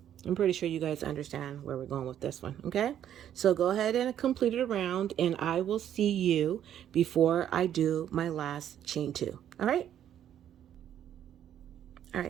I'm pretty sure you guys understand where we're going with this one, okay? So go ahead and complete it around, and I will see you before I do my last chain 2, all right? All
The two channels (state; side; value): quieter; left; 10.4 dB